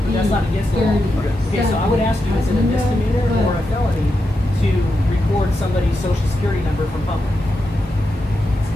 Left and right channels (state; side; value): normal; both; correlation 0.87